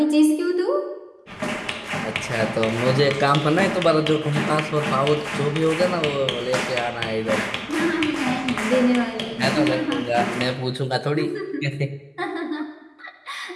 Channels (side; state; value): both; identical; correlation 1.00